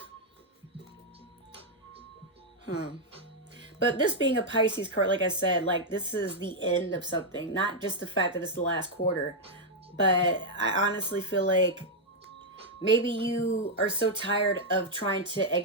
But this being a Pisces card, like I said, this is the end of something. Not just the fact that it's the last quarter. But I honestly feel like maybe you are so tired of trying to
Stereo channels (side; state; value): both; normal; correlation -0.02